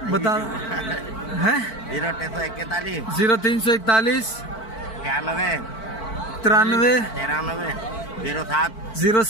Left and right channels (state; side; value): late; right; 4.5 ms